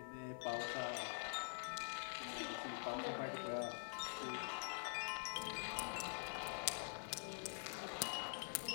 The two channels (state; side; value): silent; right; digital silence